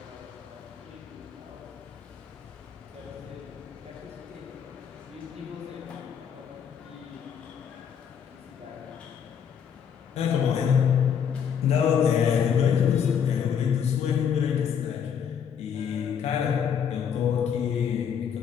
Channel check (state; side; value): quieter; right; 7.8 dB